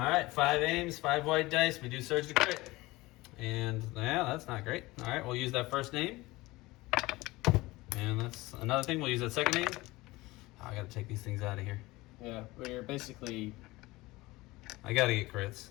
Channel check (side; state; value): right; quieter; 20.5 dB